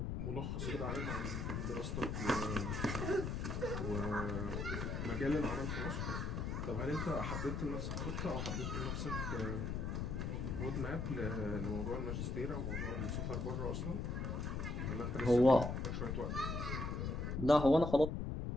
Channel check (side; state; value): left; noise; rumble, 2 dB below the sound